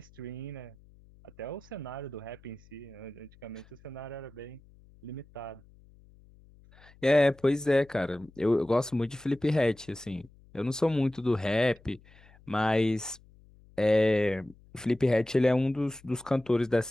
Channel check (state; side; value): noise; left; hum, 26 dB below the sound